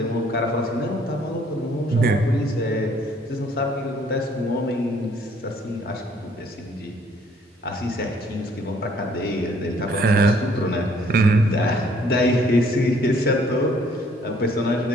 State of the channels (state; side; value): normal; both; correlation 0.62